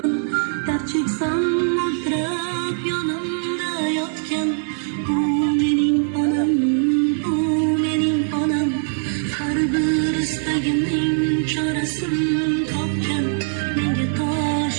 Dard cheksam mo'ltirab yonimda yotgan, bu mening onam, bu mening onam. Har bir istagimning chorasini topgan, menga tosh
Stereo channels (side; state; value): left; silent; digital silence